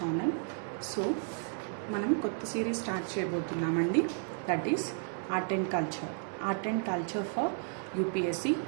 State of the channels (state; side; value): silent; left; 56 dB below the other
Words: So మనం కొత్త series start చేయబోతున్నామండి. That is art and culture for UPSC.